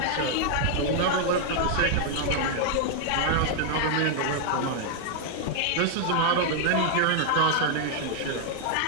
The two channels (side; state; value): both; different; correlation 0.00